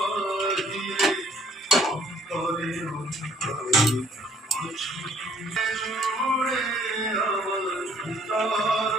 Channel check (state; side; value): normal; both; correlation 0.61